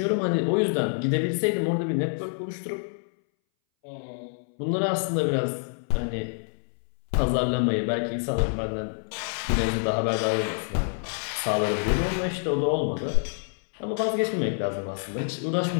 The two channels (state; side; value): silent; right; 60 dB below the other